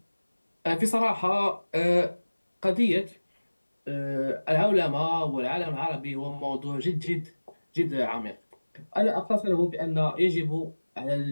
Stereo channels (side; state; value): both; inverted; correlation -1.00